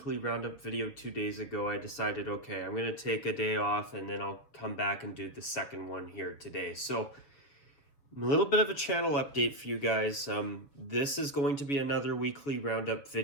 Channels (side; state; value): right; late; 6.8 ms